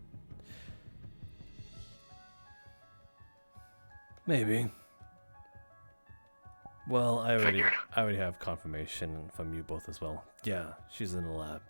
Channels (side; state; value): both; inverted; correlation -1.00